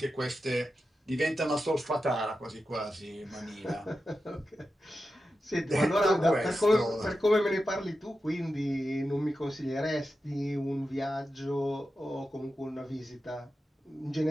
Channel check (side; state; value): both; normal; correlation 0.91